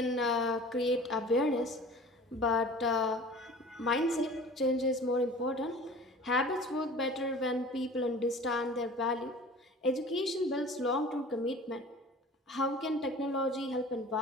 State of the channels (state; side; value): normal; both; correlation 0.43